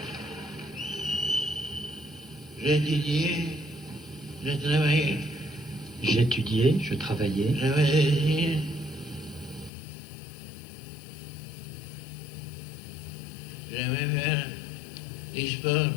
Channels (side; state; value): right; drops out; at 9.7 s